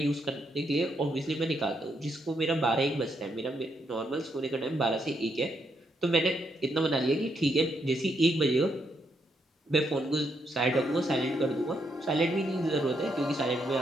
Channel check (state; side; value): normal; both; correlation 0.78